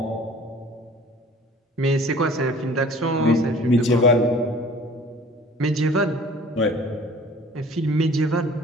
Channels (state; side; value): normal; both; correlation 0.48